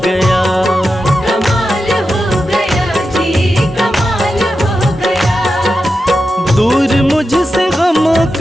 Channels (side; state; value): both; normal; correlation 0.90